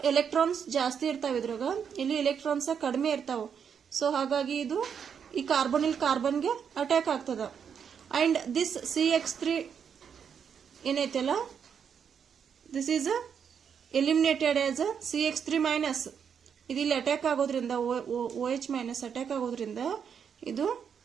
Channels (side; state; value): left; quieter; 7.4 dB